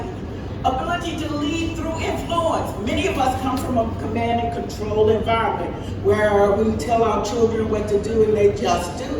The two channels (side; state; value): both; identical; correlation 1.00